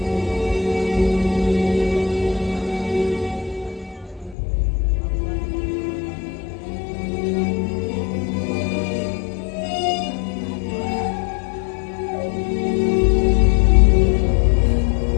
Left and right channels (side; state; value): right; drops out; at 4.4 s